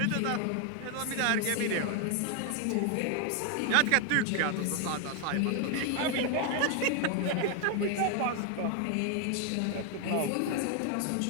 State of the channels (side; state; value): both; different; correlation 0.00